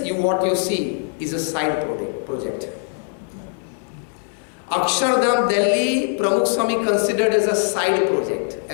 what you see, is a side project. Akshardham Delhi, Pramukh Swami considered as a side project,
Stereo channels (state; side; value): silent; right; 57 dB below the other